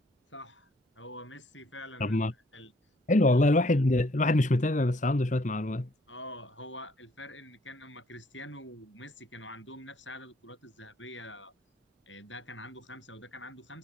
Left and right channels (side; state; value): both; normal; correlation 0.64